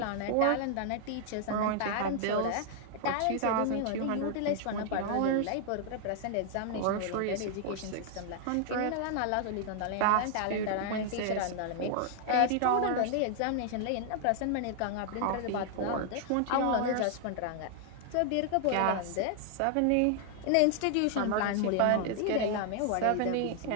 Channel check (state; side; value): different; both; correlation 0.00